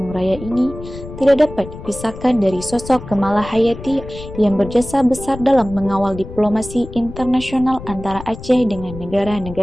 Raya ini tidak dapat dipisahkan dari sosok Kemala Hayati yang berjasa besar dalam mengawal diplomasi internasional antara Aceh dengan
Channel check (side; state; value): left; noise; rumble, 13 dB below the sound